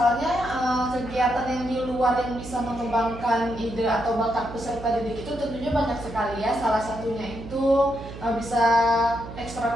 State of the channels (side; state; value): right; noise; hum, 13 dB below the sound